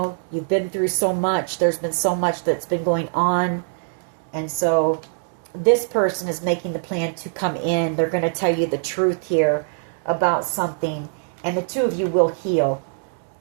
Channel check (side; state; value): left; silent; digital silence